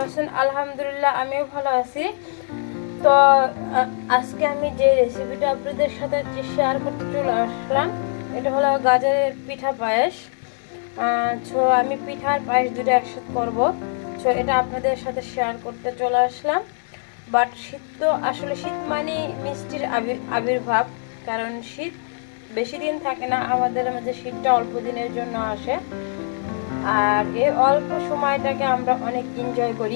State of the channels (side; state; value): right; silent; digital silence